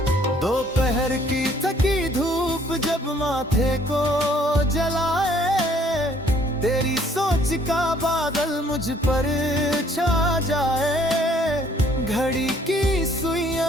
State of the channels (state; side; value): normal; both; correlation 0.61